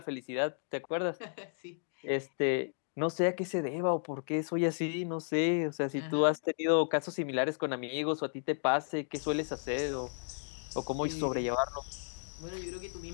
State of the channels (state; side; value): silent; right; digital silence